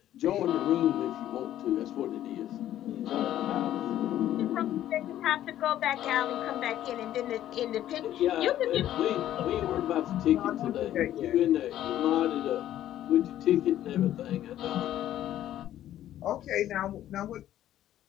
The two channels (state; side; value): quieter; right; 12.4 dB